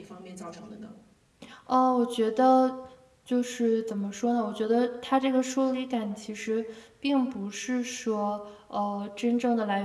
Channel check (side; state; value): both; identical; correlation 1.00